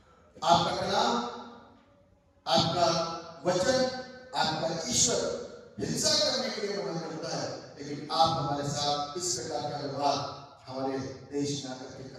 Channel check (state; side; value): identical; both; correlation 1.00